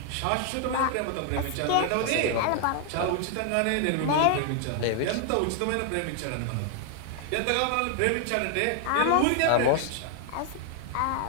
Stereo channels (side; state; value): both; different; correlation 0.00